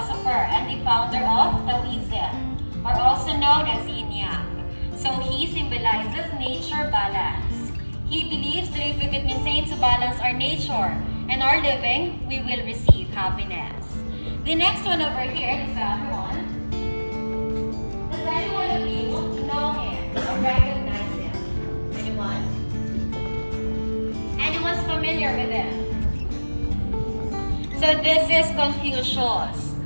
and the founder of Taoism, or also known as Yin Yang. So he symbolizes nature balance. He believes that if we could maintain to balance our nature and our living, we will receive happiness. The next one over here is everyone. Does anyone of you know him or recognize him? Anyone? Anyone's familiar with him? So this is Confucius.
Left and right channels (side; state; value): both; inverted; correlation -1.00